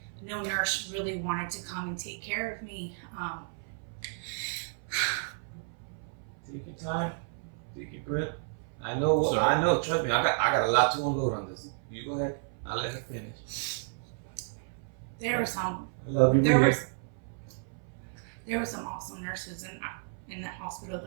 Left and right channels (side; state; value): left; silent; 57 dB below the other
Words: No nurse really wanted to come and take care of me. Take your time. Take your breath. I know. Trust me, I got a lot to unload on this. You go ahead. I'll let her finish. There were some. I love you. There were some awesome nurses in that hospital.